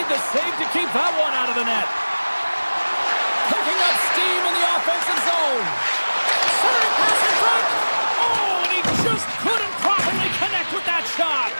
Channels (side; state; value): both; inverted; correlation -1.00